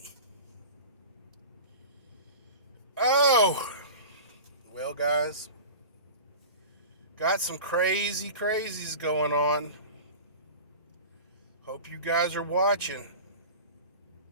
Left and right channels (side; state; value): both; inverted; correlation -0.35